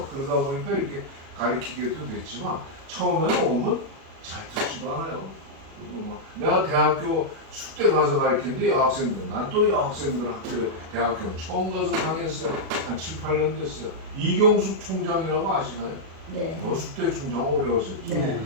그러다 보니까 이렇게 가르치게도 됐지만 처음에는 오면 잘 듣지도 않아요. 내가 대학교 숙대 가서 가르치는데 여학생들, 난 또 여학생들 대학교는 처음 가서 강의했어요. 한 7, 8년 됐어요. 이경숙 총장이라고 아시나요? 네. 숙대 총장 오래 하셨죠.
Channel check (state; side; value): late; left; 37 ms